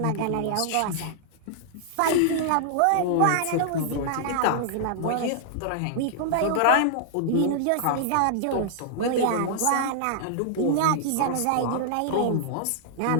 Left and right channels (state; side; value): different; both; correlation -0.01